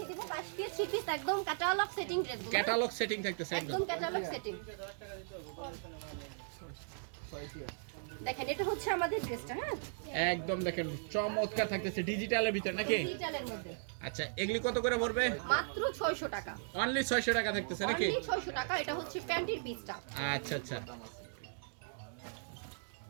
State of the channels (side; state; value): left; silent; digital silence